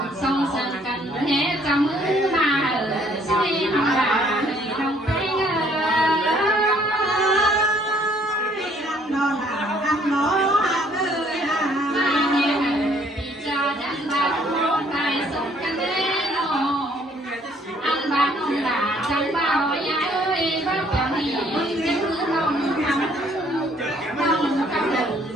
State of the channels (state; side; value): normal; both; correlation 0.63